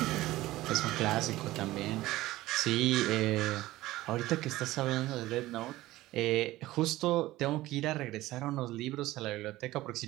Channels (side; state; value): left; quieter; 17.1 dB